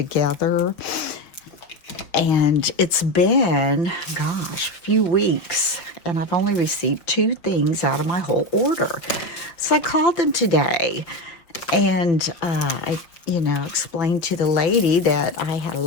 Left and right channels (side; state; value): right; late; 5.8 ms